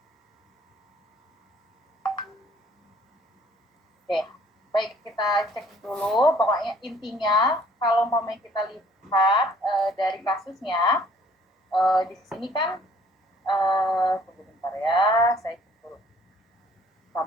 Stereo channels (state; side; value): normal; both; correlation 0.58